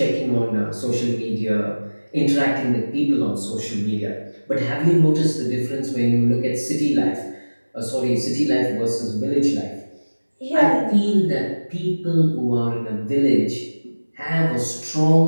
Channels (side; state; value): both; inverted; correlation -1.00